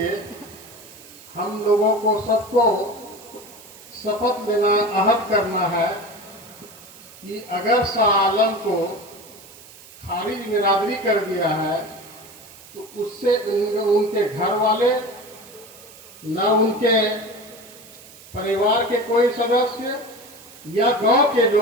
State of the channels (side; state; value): right; noise; hiss, 21 dB below the sound